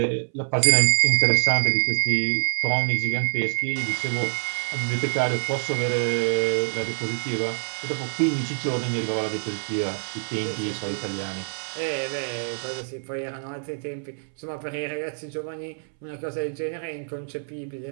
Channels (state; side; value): silent; left; 61 dB below the other